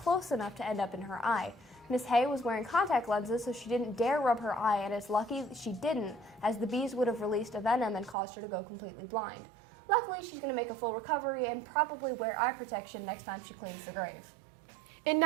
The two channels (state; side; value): drops out; left; at 8.2 s